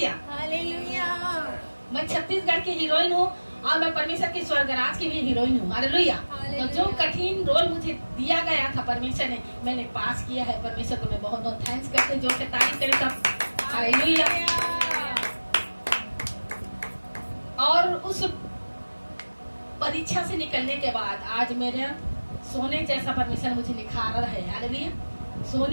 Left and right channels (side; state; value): both; inverted; correlation -1.00